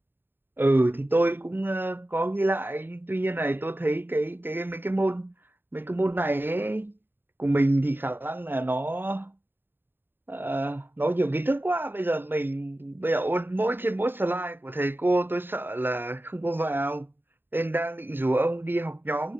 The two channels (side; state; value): left; late; 0.097 ms